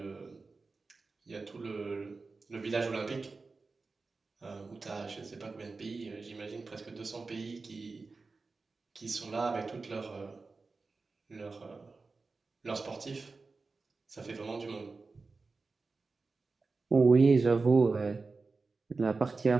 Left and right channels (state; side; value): quieter; left; 4.0 dB